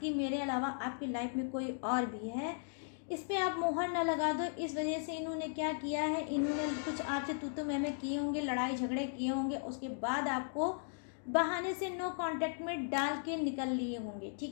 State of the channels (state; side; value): silent; right; digital silence